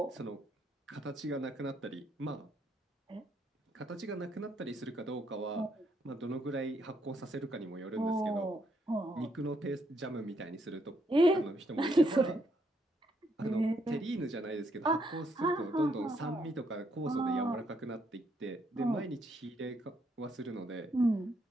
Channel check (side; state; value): both; normal; correlation 0.74